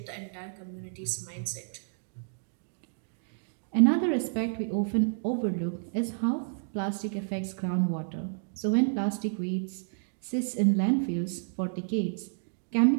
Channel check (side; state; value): left; silent; digital silence